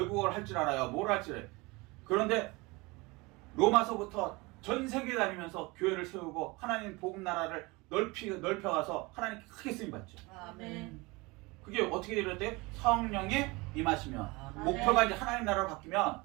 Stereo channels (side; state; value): left; quieter; 24.4 dB